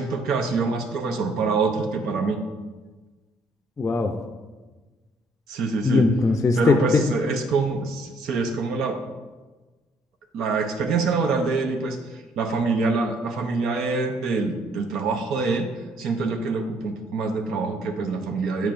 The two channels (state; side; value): normal; both; correlation 0.65